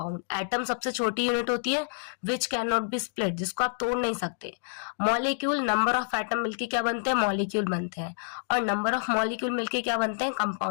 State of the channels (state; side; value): silent; right; digital silence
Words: एटम सबसे छोटी यूनिट होती है which can not be split, जिसको आप तोड़ नहीं सकते। मॉलिक्यूल, नंबर ऑफ एटम मिलके क्या बनते हैं, मॉलिक्यूल बनते हैं, और नंबर ऑफ मॉलिक्यूल मिलके क्या बनते हैं,